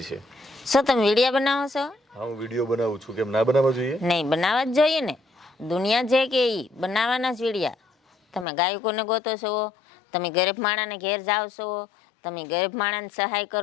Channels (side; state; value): right; drops out; at 8.5 s